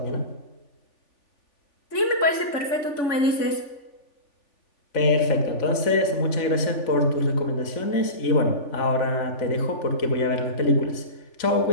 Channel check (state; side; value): late; right; 3.5 ms